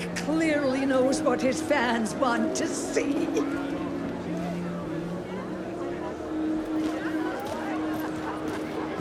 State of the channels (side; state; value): both; identical; correlation 1.00